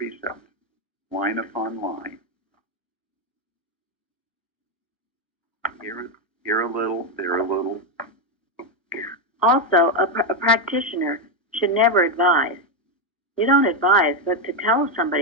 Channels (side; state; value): both; normal; correlation 0.05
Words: line upon line. Here a little, there a little. Also, a practitioner should never advise. You don't advise, but to tell